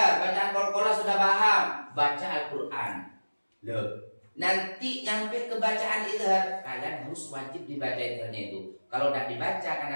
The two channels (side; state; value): both; inverted; correlation -1.00